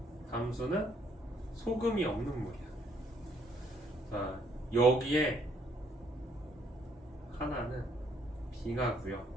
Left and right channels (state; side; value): normal; both; correlation 0.68